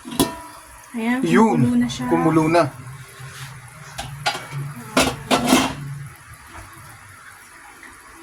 Ayan, Yun, kumulo na siya. kumulo na.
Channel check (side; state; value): both; identical; correlation 1.00